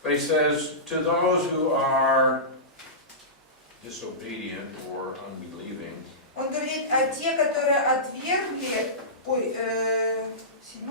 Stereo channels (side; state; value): both; normal; correlation -0.20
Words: But he says, to those who are disobedient or unbelieving, Он говорит, а те, которые отвергли,